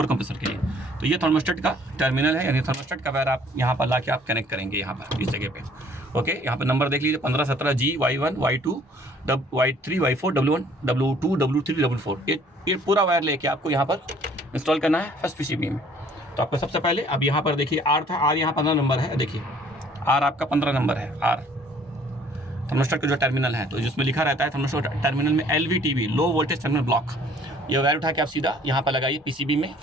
compressor के लिए। तो ये थर्मोस्टेट का टर्मिनल है, यानी थर्मोस्टेट का वायर आप यहाँ पर ला के आप कनेक्ट करेंगे यहाँ पर इस जगह पे। ओके, यहाँ पर नंबर देख लीजिए 15 17 G Y1 Y2 Y3 Y4 W1 W2 W3 W4। ये पूरा वायर लेके आपको यहाँ पर इंस्टॉल करना है फर्स्ट PCB में। तो आपको सबसे पहले अब यहाँ पर देखिए R था, R यहाँ 15 नंबर है, देखिए R आपका 15 नंबर है, R थर्मोस्टेट का जो टर्मिनल है। तो जिसमें लिखा रहता है थर्मोस्टेट टर्मिनल में LVTB low voltage terminal block, ये वायर उठा के आप सीधा यहाँ पर लगाइए PCB में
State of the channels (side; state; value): both; normal; correlation 0.57